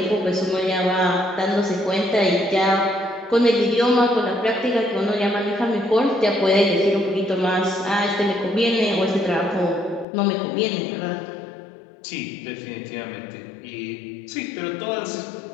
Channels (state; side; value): drops out; right; at 10.1 s